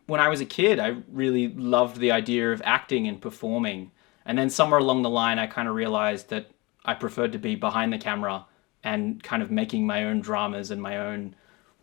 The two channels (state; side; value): quieter; right; 24.9 dB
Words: when I was a kid. I really loved the idea of acting and performing. And then somewhere along the line, I kind of realized that I preferred to be behind the camera and kind of making my own dramas and my own